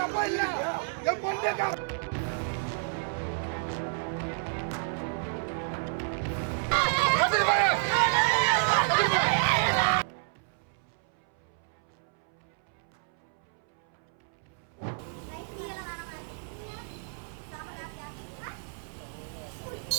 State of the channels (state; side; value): silent; left; 58 dB below the other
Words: அப்பா இல்ல என் பொண்ணு